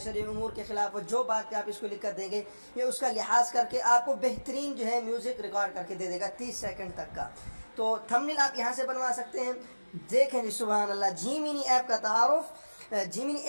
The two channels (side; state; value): both; inverted; correlation -1.00